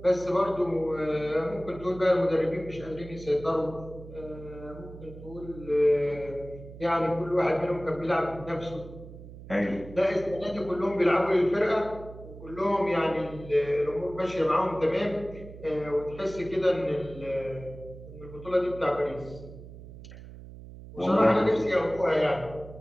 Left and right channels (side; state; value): right; noise; hum, 15 dB below the sound